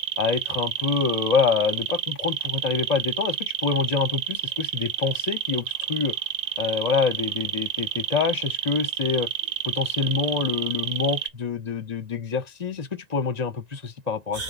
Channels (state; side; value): late; left; 1.9 ms